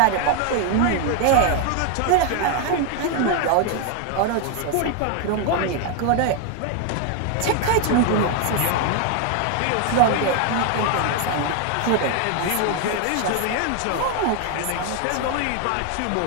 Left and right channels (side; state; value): both; different; correlation 0.01